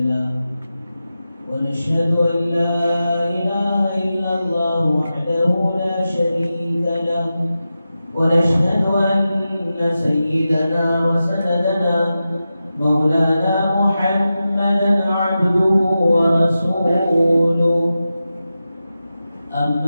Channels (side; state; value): both; inverted; correlation -0.92